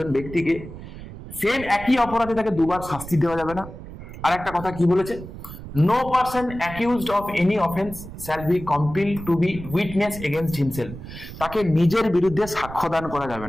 ব্যক্তিকে সেম একই অপরাধে তাকে দুবার শাস্তি দেওয়া যাবে না। আর একটা কথা কি বলেছে, no person accused of any offence shall be compelled to be witness against himself. তাকে নিজের বিরুদ্ধে সাক্ষ্যদান করা যাবে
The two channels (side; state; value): right; noise; rumble, 12 dB below the sound